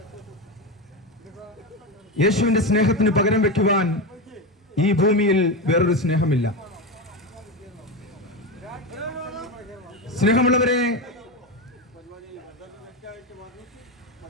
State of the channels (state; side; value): normal; both; correlation 0.16